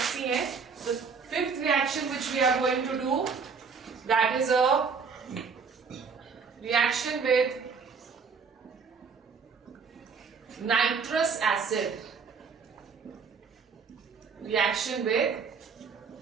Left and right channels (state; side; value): quieter; left; 5.5 dB